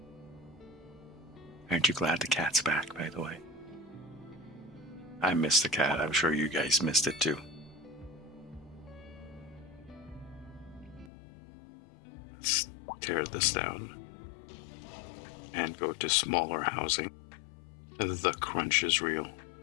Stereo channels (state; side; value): drops out; right; at 11.1 s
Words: Aren't you glad the cat's back, by the way? I missed the cat. I'm sure you guys missed it too. Let's tear this down and go to smaller housing. The crunch is real.